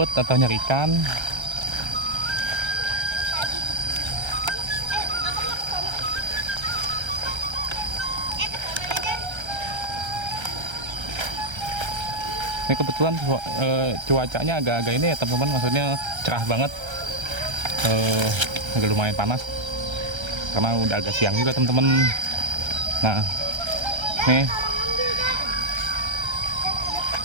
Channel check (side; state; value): left; late; 1.3 ms